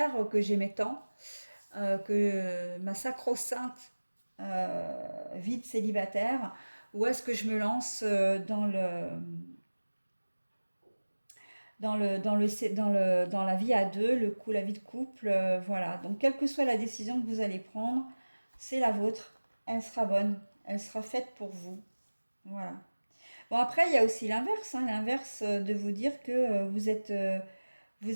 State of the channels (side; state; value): both; inverted; correlation -1.00